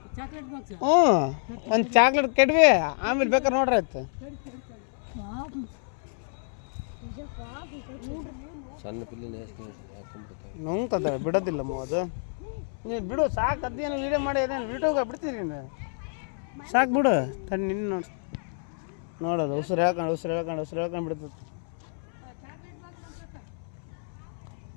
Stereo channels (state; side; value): silent; right; 59 dB below the other